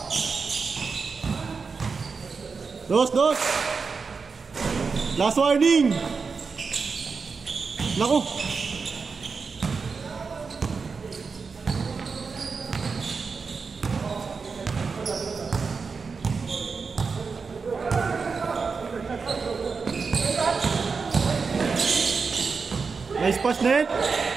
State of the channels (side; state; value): left; quieter; 5.0 dB